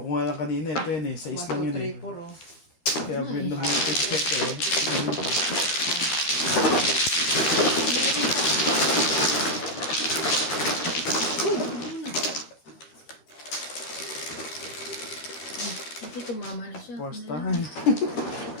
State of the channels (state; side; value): late; right; 13 ms